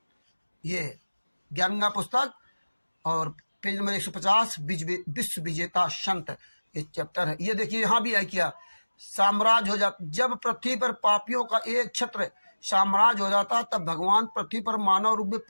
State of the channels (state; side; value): inverted; both; correlation -1.00